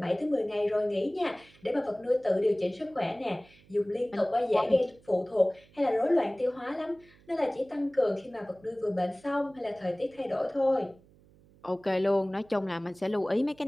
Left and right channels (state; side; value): noise; right; hum, 28 dB below the sound